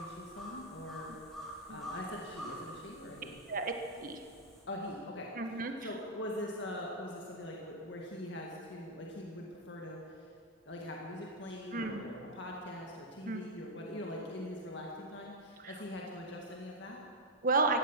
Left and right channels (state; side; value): normal; both; correlation -0.02